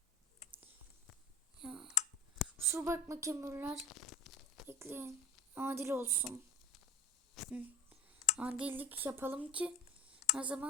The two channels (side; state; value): both; normal; correlation 0.34